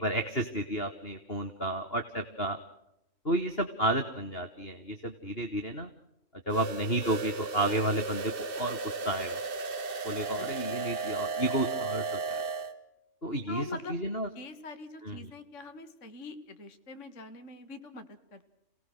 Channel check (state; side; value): late; right; 2.7 ms